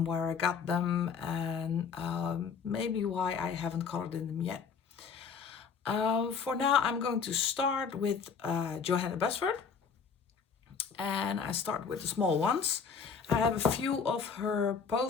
where I got them, and maybe why I haven't colored in them yet. For now, I'm going to start with Johanna Basford, and I start with the small ones. I have a few of her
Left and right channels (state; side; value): quieter; right; 6.0 dB